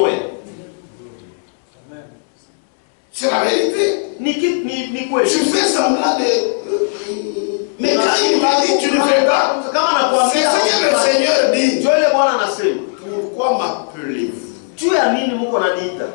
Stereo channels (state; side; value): silent; right; 68 dB below the other